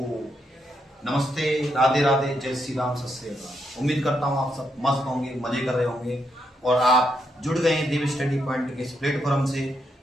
नमस्ते, राधे राधे, जय श्री राम, सत श्री अकाल। उम्मीद करता हूँ आप सब मस्त होंगे, मजे कर रहे होंगे और आप जुड़ गए हैं देव स्टडी पॉइंट के इस प्लेटफॉर्म से।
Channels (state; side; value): normal; both; correlation 0.80